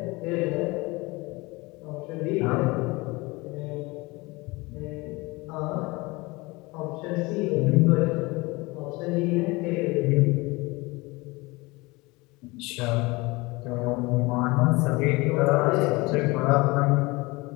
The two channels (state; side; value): quieter; right; 23.7 dB